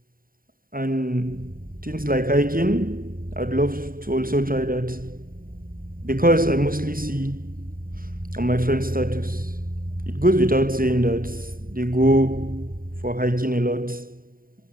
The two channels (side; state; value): left; late; 0.41 ms